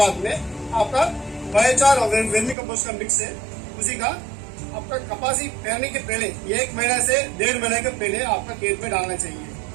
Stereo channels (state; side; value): drops out; left; at 2.6 s